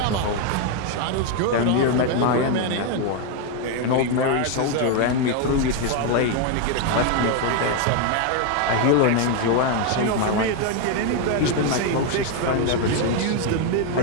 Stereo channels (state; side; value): different; both; correlation 0.01